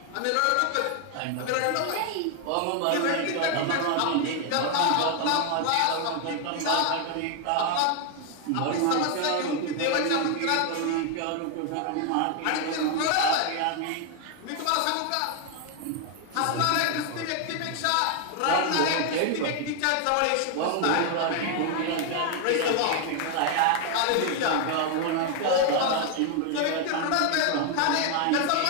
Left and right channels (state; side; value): different; both; correlation 0.01